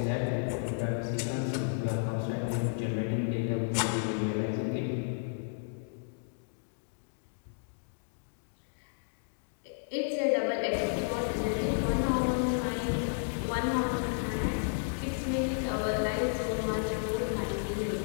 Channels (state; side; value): silent; right; digital silence